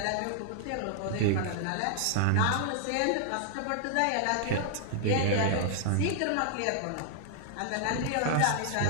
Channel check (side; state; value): both; different; correlation -0.01